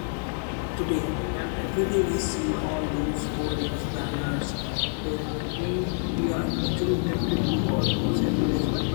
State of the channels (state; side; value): silent; right; 57 dB below the other